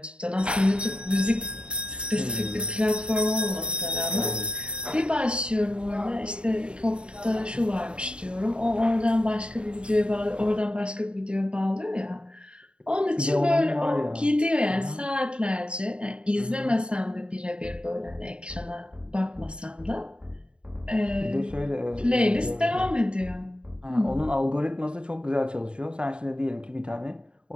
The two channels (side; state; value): left; late; 0.053 ms